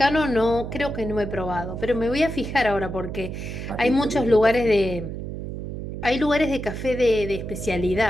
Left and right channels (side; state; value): right; noise; hum, 7 dB below the sound